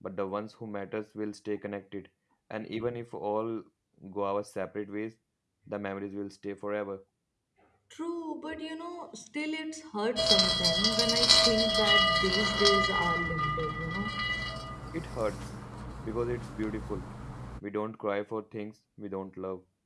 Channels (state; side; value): identical; both; correlation 1.00